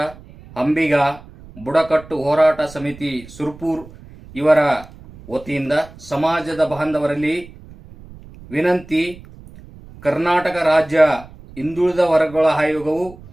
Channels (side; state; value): right; noise; rumble, 20 dB below the sound